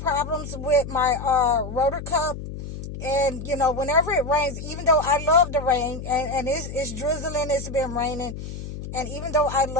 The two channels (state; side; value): noise; left; hum, 9 dB below the sound